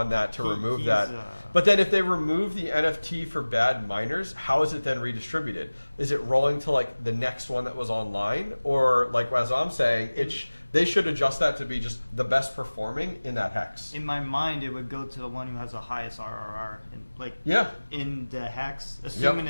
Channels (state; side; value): inverted; both; correlation -1.00